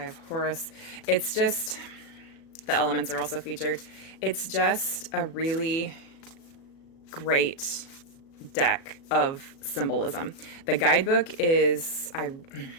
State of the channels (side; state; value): right; late; 37 ms